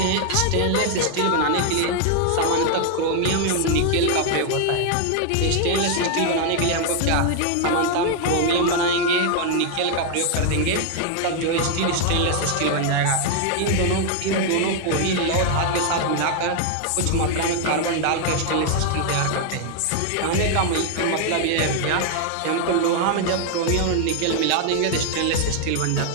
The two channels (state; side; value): different; both; correlation 0.00